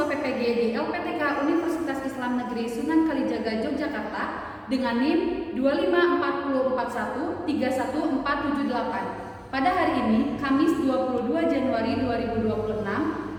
PPG di LPTK Universitas Islam Negeri Sunan Kalijaga Yogyakarta dengan NIM 254413148. Pada hari ini, Kamis 22 Januari 2026,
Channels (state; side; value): identical; both; correlation 1.00